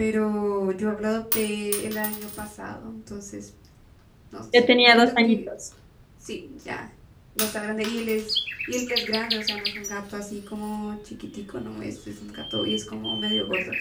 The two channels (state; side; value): identical; both; correlation 1.00